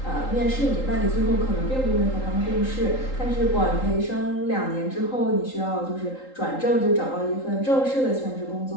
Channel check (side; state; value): right; late; 3.8 ms